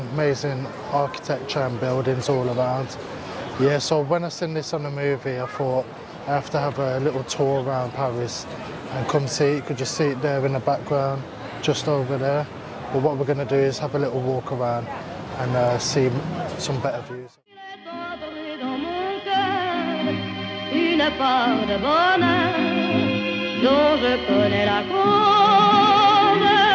architecture and buildings all around. Yeah, so when I seen this on the movie, I thought I have to have a little tour around Paris and come see it. You could just see it there in the background, just over there. But what we're going to do is have a little walk around and see some better views. Une part de bonheur dont je connais la cause.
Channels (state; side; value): identical; both; correlation 1.00